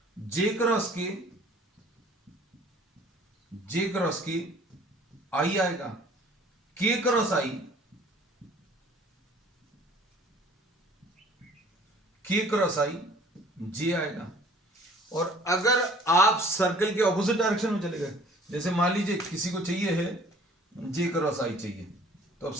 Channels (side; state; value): both; normal; correlation 0.53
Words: जे क्रॉस के आई आएगा, के cross I K cross I J आएगा। और अगर आप सर्कल के ऑपोजिट डायरेक्शन में चले गए, जैसे मान लीजिए किसी को चाहिए है J क्रॉस I चाहिए, तो अब